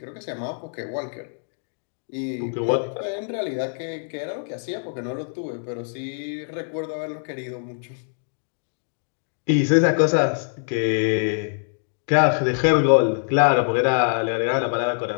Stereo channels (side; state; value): right; silent; digital silence